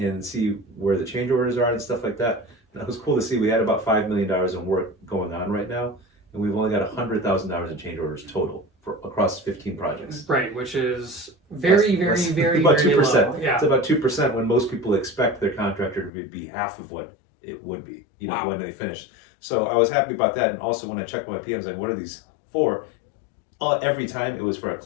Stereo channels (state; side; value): drops out; right; at 16.1 s